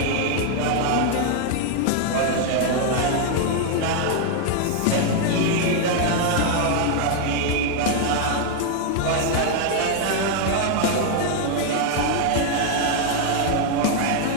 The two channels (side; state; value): both; different; correlation 0.00